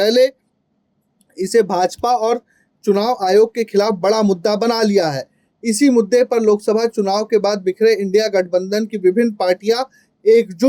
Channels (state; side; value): identical; both; correlation 1.00